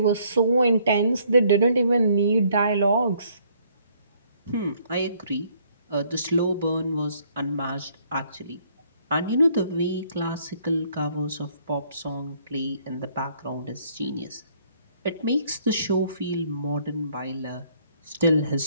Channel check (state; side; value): inverted; both; correlation -0.65